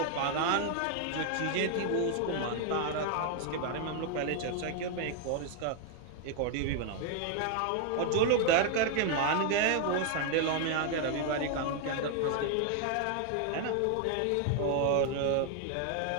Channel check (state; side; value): different; both; correlation 0.00